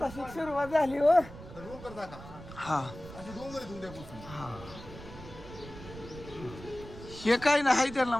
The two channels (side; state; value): right; noise; rumble, 14 dB below the sound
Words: सुरुवात झाली हो. डोंगर दाखवा. हा अशी डोंगर आहे उद्यापासून. हे काय नाही आहे त्यांना